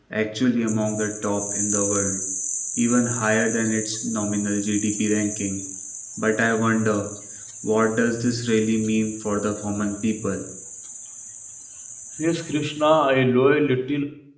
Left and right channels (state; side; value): identical; both; correlation 1.00